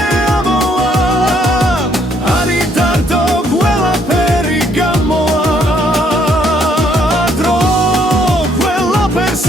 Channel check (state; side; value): normal; both; correlation 0.68